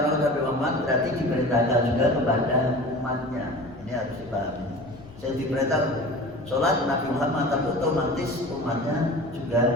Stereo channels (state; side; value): noise; left; rumble, 21 dB below the sound